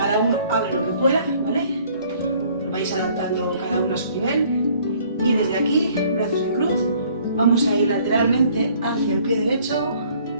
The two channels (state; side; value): inverted; both; correlation -0.59